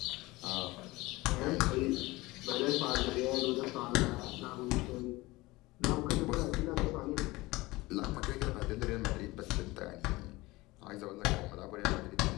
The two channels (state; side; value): quieter; right; 20.7 dB